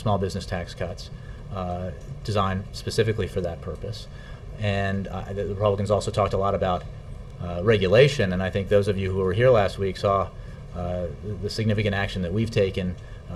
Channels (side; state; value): both; identical; correlation 1.00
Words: business tax cuts designed specifically for that purpose. And the Republicans also talked a lot about regulation, and I think those of you who were here last week saw the significant action that we've taken